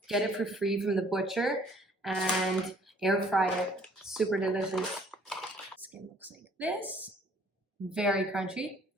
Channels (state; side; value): normal; both; correlation 0.59